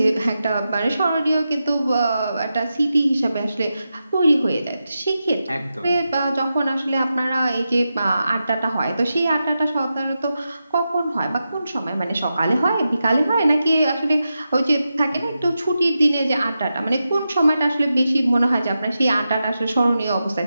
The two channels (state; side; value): inverted; both; correlation -0.90